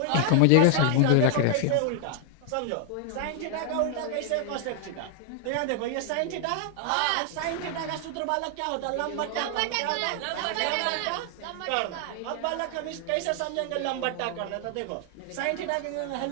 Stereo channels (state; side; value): different; both; correlation 0.00